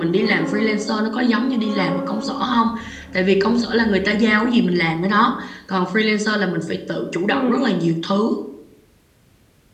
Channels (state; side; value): identical; both; correlation 1.00